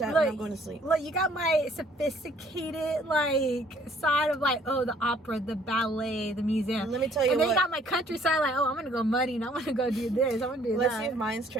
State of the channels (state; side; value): normal; both; correlation 0.60